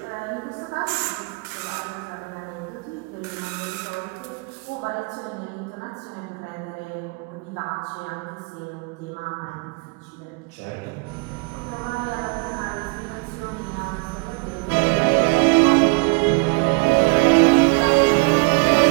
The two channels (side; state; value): left; quieter; 31.4 dB